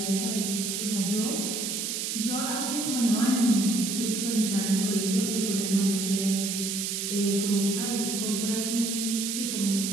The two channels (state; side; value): noise; right; hiss, 2 dB below the sound